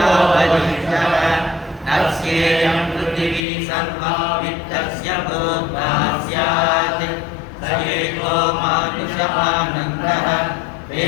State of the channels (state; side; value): drops out; right; at 3.5 s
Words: वरिष्ठः तस्येयं पृथिवी सर्वा वित्तस्य भूता स्यात् स एको मानुषानन्दः ते